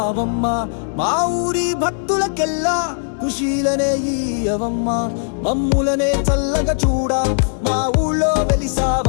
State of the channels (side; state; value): right; silent; digital silence